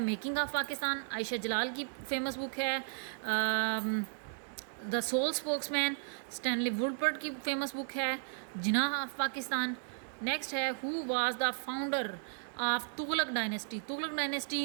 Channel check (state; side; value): silent; left; digital silence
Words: ऑफ पाकिस्तान। आयशा जलाल की फ़ेमस बुक है the sole spokesman. Stanley Woodward की फ़ेमस बुक है जिनाह ऑफ पाकिस्तान। नेक्स्ट है, who was the founder of Tughlaq dynasty. Tughlaq